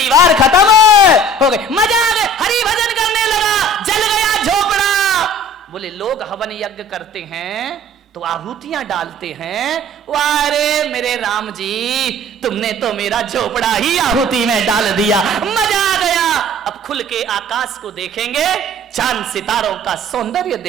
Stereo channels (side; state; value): both; normal; correlation 0.48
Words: खत्म हो गई, मजा आ गया, हरि भजन करने लगा, जल गया झोपड़ा। बोले लोग हवन यज्ञ करते हैं तो आहुतियां डालते हैं, वारे मेरे राम जी, तुमने तो मेरा झोपड़ा ही आहुति में डाल दिया, मजा आ गया। अब खुल के आकाश को देखेंगे, चांद सितारों का सौंदर्य